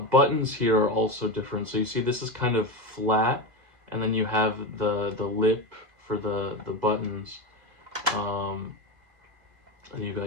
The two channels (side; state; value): left; late; 2.0 ms